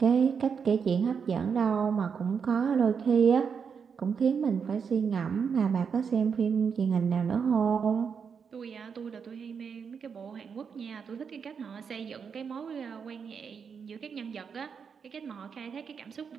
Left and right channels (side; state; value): left; quieter; 6.4 dB